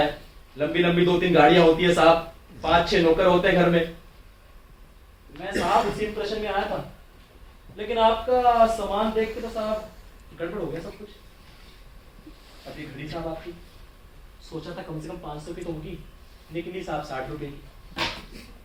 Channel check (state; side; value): identical; both; correlation 1.00